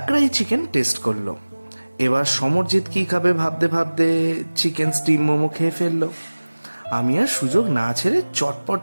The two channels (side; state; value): both; inverted; correlation -1.00